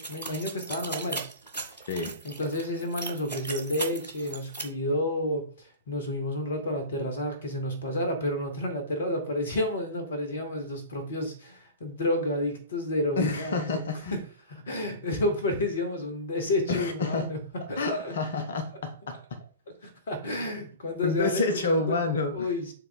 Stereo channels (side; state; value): both; inverted; correlation -0.34